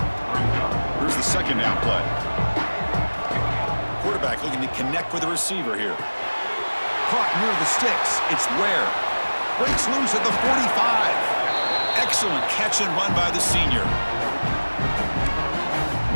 Here's the second down play. Quarterback looking to connect with the receiver here. Caught near the sticks. It's Ware. Breaks loose at the 45. Excellent catch and run by the senior.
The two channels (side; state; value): both; inverted; correlation -1.00